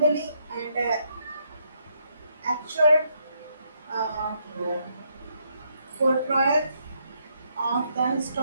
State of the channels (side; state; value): both; inverted; correlation -0.75